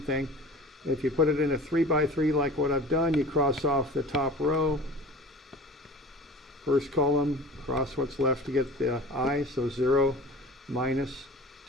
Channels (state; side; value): normal; both; correlation 0.40